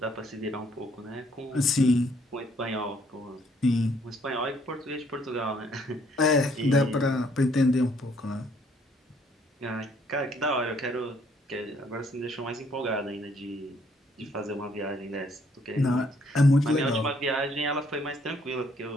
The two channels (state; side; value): normal; both; correlation 0.66